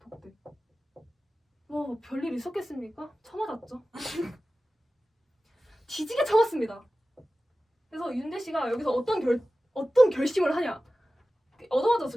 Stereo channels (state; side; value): normal; both; correlation 0.96